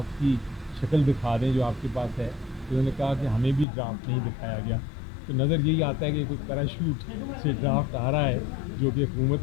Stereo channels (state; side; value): drops out; right; at 3.7 s